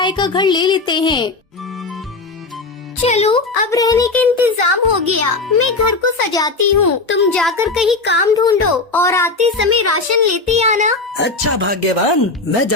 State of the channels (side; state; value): right; quieter; 3.5 dB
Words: का घर ले लेते हैं। चलो, अब रहने का इंतजाम हो गया। मैं घर को सजाती हूँ, तुम जाकर कहीं काम ढूंढो और आते समय राशन लेते आना। अच्छा भाग्यवान, मैं